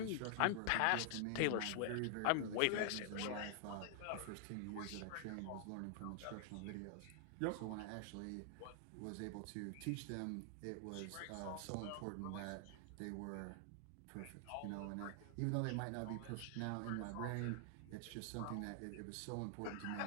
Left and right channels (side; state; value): both; different; correlation 0.00